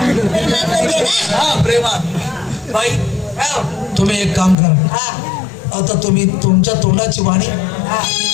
ना. हा प्रेमात. बाई तुम्ही एक काम करा. आता तुम्ही तुमच्या तोंडाची वाणी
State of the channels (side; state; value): right; drops out; at 4.5 s